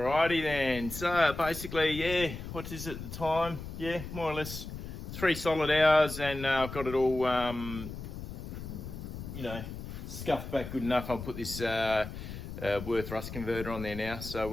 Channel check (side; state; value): left; noise; rumble, 9 dB below the sound